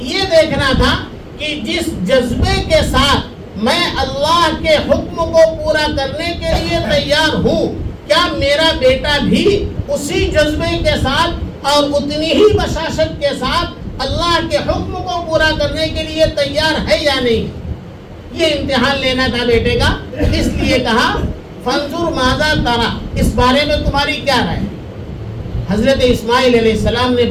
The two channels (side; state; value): both; identical; correlation 1.00